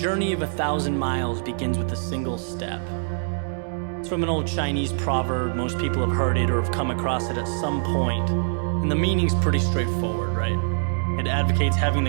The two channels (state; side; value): silent; left; digital silence